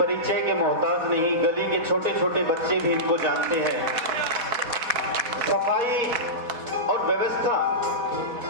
के मोहताज नहीं, गली के छोटे छोटे बच्चे भी इनको जानते हैं। सफाई और व्यवस्था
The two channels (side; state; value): left; late; 4.1 ms